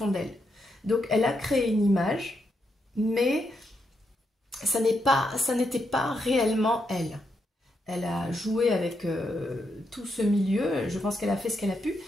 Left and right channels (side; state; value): both; normal; correlation 0.81